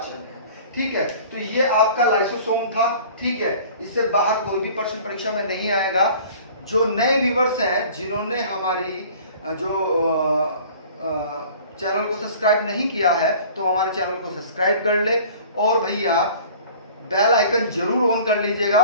है। ठीक है, तो ये आपका लाइसोसोम था। ठीक है, इससे बाहर कोई भी प्रश्न परीक्षा में नहीं आएगा। जो नए व्यूवर्स हैं, जिन्होंने हमारी जो चैनल को सब्सक्राइब नहीं किया है, तो हमारे चैनल को सब्सक्राइब कर ले, और भैया बेल आइकन जरूर ऑन कर लीजिएगा,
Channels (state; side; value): inverted; both; correlation -0.47